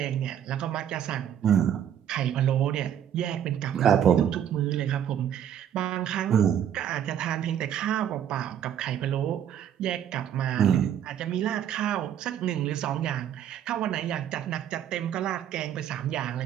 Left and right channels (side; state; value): left; quieter; 9.7 dB